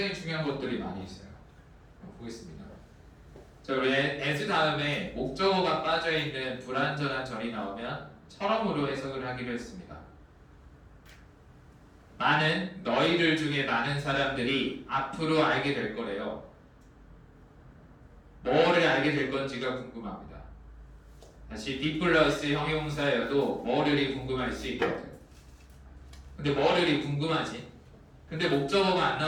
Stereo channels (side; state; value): both; identical; correlation 1.00